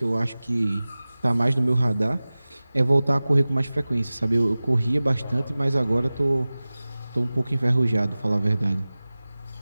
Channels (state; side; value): inverted; both; correlation -0.98